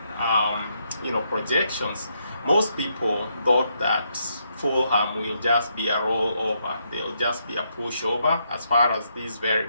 projections, most people thought that Fulham will just be a rollover. They'll just be a pushover as far as this very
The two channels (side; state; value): both; inverted; correlation -0.77